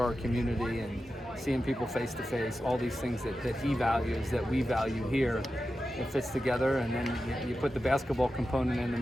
our community, and seeing people face to face, all these things that he values, that we value here, it fits together, and then you put the basketball component in the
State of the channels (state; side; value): normal; both; correlation 0.92